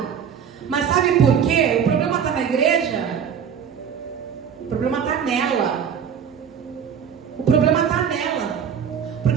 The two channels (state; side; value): quieter; left; 7.7 dB